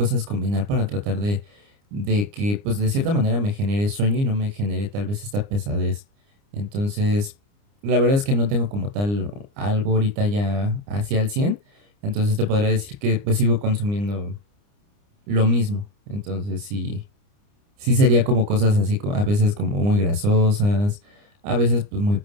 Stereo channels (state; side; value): late; left; 29 ms